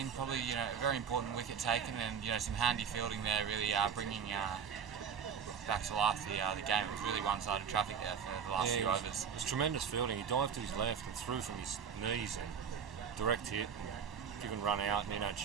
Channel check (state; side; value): quieter; left; 7.1 dB